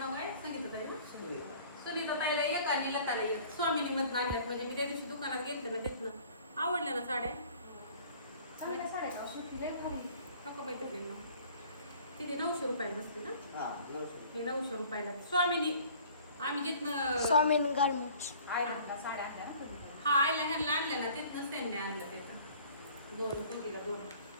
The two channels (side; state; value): both; inverted; correlation -0.51